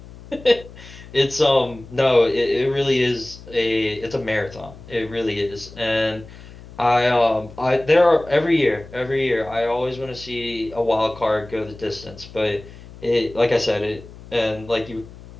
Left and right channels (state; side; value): noise; left; hum, 18 dB below the sound